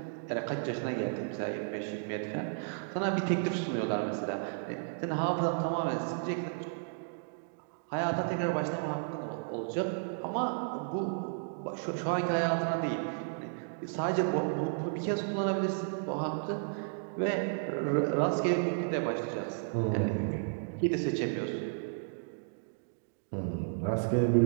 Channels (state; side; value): silent; left; digital silence